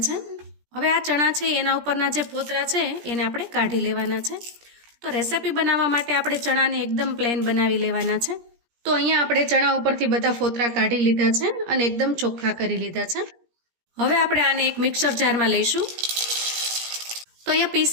છે। હવે આ ચણા છે એના ઉપરના જે ફોતરા છે એને આપણે કાઢી લેવાના છે। તો રેસિપી બનાવવા માટે આપણે ચણાને એકદમ પ્લેન બનાવી લેવાના છે। તો અહીંયા આપણે ચણા ઉપરથી બધા ફોતરા કાઢી લીધા છે અને એકદમ ચોખ્ખા કરી લીધા છે। હવે આપણે આને એક મિક્સર જારમાં લઈશું। તો અહીંયા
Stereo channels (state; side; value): late; left; 17 ms